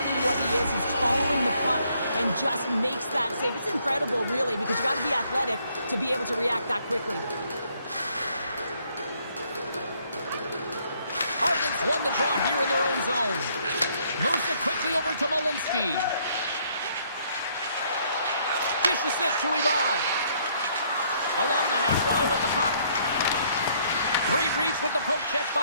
what he is. He's following the puck and just makes that save. It's incredible, really, because you got to be athletic to be able to react that quickly. Ardents won the draw here in their own zone. Moves it quickly over to Malinsky. Dishes it to Ivan. Along the half wall with the puck. Great reach with the poke check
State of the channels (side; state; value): both; inverted; correlation -0.67